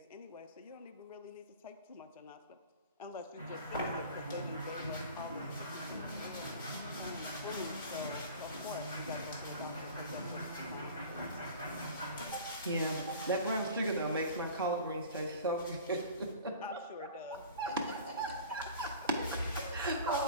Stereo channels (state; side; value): inverted; both; correlation -0.41